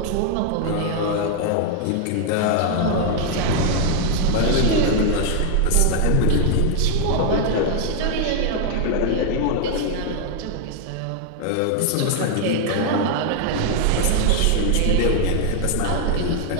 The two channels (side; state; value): both; different; correlation 0.00